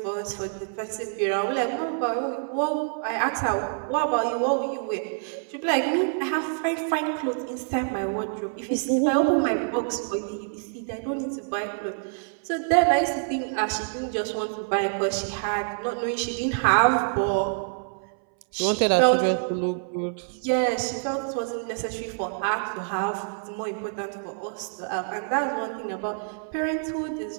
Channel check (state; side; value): silent; left; 60 dB below the other